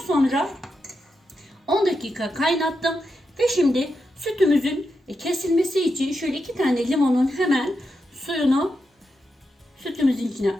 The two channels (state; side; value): normal; both; correlation 0.87